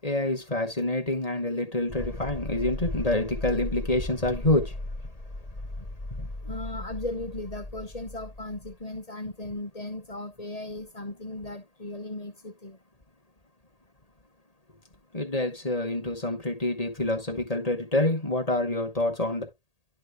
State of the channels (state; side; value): late; right; 1.8 ms